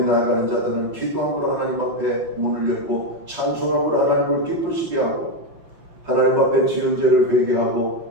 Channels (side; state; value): left; late; 5.8 ms